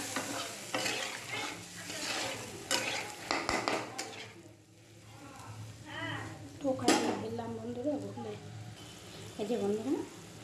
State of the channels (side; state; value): both; identical; correlation 1.00